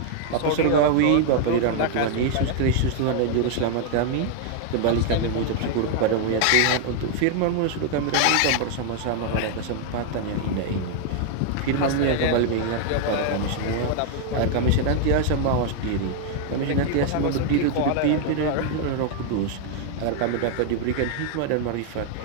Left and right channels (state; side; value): different; both; correlation 0.00